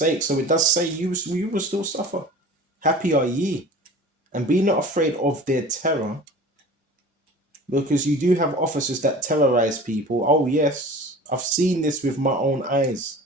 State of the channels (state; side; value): normal; both; correlation 0.40